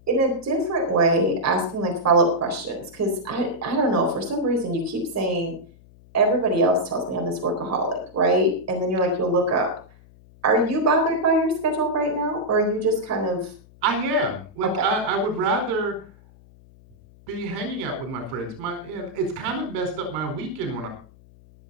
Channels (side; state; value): left; noise; hum, 25 dB below the sound